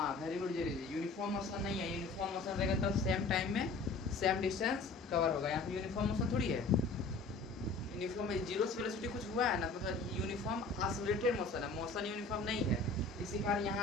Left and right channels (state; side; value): quieter; right; 3.7 dB